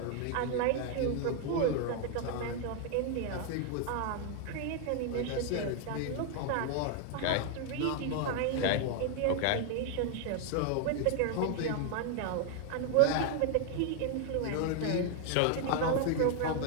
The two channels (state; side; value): different; both; correlation 0.00